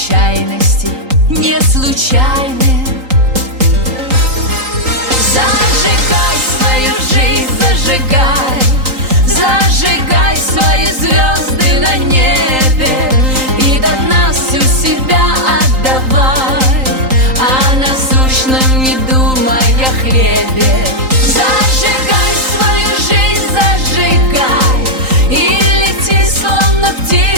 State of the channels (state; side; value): late; left; 3.8 ms